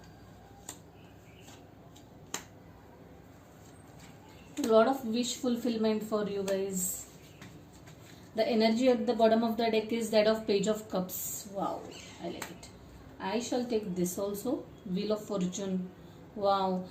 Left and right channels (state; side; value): identical; both; correlation 1.00